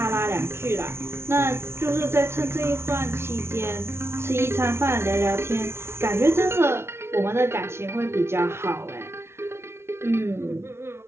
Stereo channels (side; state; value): left; late; 0.12 ms